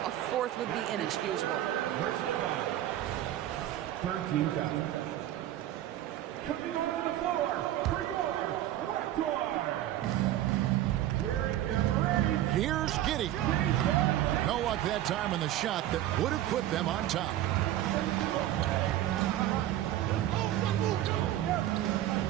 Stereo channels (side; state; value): left; quieter; 13.2 dB